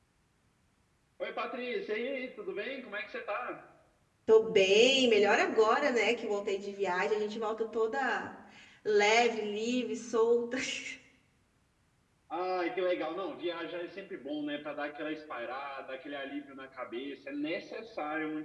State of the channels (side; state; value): both; identical; correlation 1.00